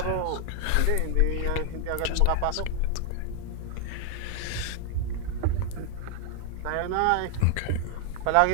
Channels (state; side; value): different; both; correlation 0.00